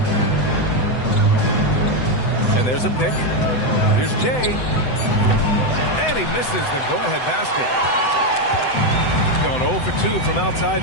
And there's a pick. Here's Jay. And he misses the go-ahead basket. Going 0 for 2 from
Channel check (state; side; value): late; right; 7.9 ms